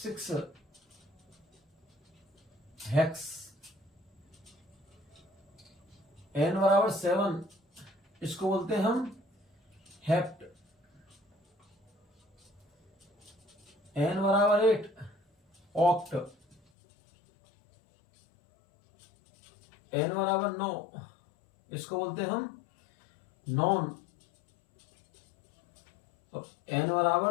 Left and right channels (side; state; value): right; drops out; at 16.6 s